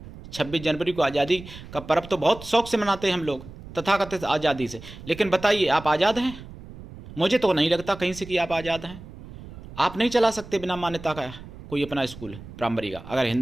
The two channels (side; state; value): right; noise; rumble, 15 dB below the sound